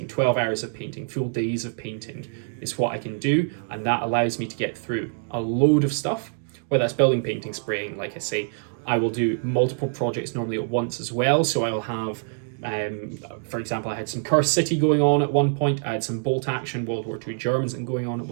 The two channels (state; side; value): silent; left; digital silence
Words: 12 hours of painting, full days of painting is what I can do, and that allows me to get through a load of stuff, whether that's building, painting, spraying. Like I say, I will do multiple projects normally at once as well, so I will have for example, I had some Cursed City going on at one point, I had some Bolt Action World War II Germans going on at